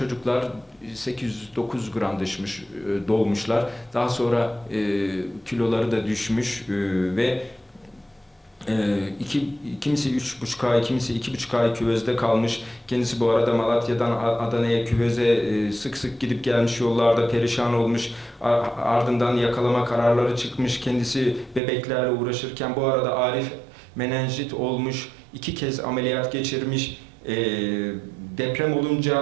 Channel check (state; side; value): drops out; left; at 21.6 s